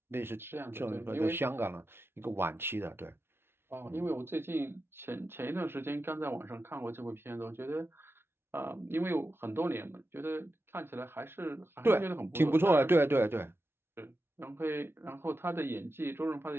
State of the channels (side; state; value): left; late; 0.12 ms